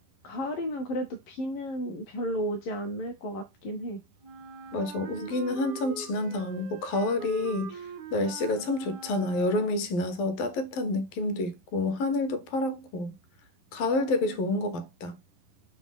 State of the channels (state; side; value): late; right; 11 ms